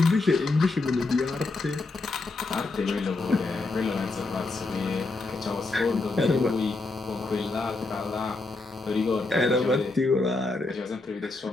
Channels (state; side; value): quieter; right; 3.4 dB